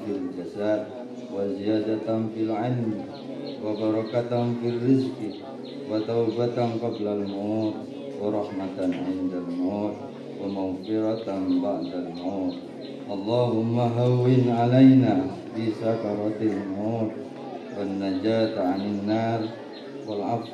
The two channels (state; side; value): identical; both; correlation 1.00